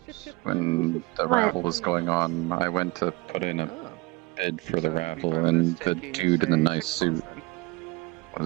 the chip when the What? raffle was going on, I went to put in a Oh. bid for the raffle, and the dude in the nice suit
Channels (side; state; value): left; quieter; 23.8 dB